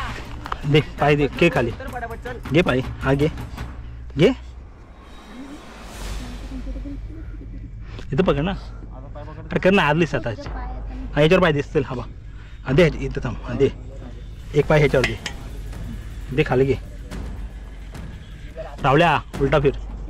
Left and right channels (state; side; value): identical; both; correlation 1.00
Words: दे पाय दे के खाली घे पाय हा घे घे इथं पकड ना अरे कर ना आदलीस आता हा ह्याच्यावर पाय दिसतील हा बा हा दे इथं थांब हा दे एक पाय ह्याच्यावर दे खाली घे रावल्या उलटा फिर